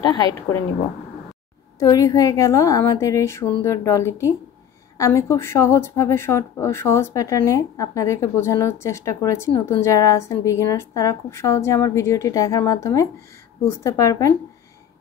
হাইড করে নিব। তৈরি হয়ে গেল আমাদের এই সুন্দর ডলিটি। আমি খুব সহজভাবে সহজ প্যাটার্নে আপনাদেরকে বোঝানোর চেষ্টা করেছি। নতুন যারা আছেন বিগিনার্স, তারা খুব সহজে আমার ভিডিওটি দেখার মাধ্যমে বুঝতে পারবেন।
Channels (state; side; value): quieter; right; 9.0 dB